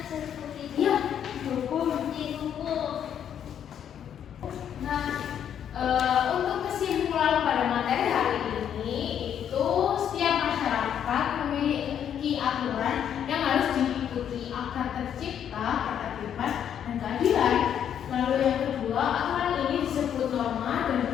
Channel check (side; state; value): right; quieter; 9.2 dB